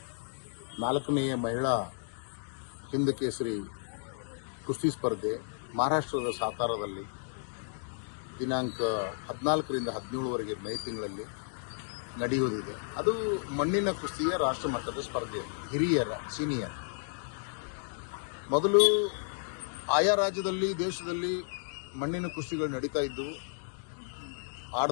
4ನೇಯ ಮಹಿಳಾ ಹಿಂದ್ ಕೇಸರಿ ಕುಸ್ತಿ ಸ್ಪರ್ಧೆ ಮಹಾರಾಷ್ಟ್ರದ ಸಾತಾರದಲ್ಲಿ ದಿನಾಂಕ 14ರಿಂದ 17ವರೆಗೆ ಮೇ ತಿಂಗಳಲ್ಲಿ ನಡೆಯುವುದಿದೆ. ಅದು ಮಣ್ಣಿನ ಕುಸ್ತಿಯ ರಾಷ್ಟ್ರ ಮಟ್ಟದ ಸ್ಪರ್ಧೆ, ಹಿರಿಯರ ಸೀನಿಯರ್. ಮೊದಲು ಆಯಾ ರಾಜ್ಯದಲ್ಲಿ ದೇಶದಲ್ಲಿ ಮಣ್ಣಿನ ಕುಸ್ತಿಗಳು ನಡೀತಾ ಇದ್ದವು,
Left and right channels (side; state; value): right; silent; digital silence